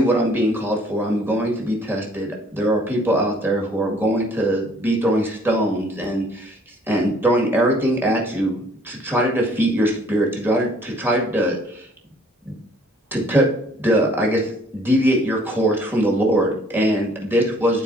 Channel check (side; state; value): both; normal; correlation 0.58